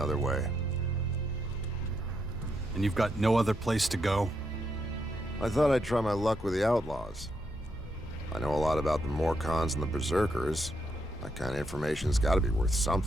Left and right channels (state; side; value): normal; both; correlation 0.80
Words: way. And you've got no other place to go? I thought I'd try my luck with the Outlaws. I know a lot about the Morcons and the Berserkers. That kind of information's gotta be worth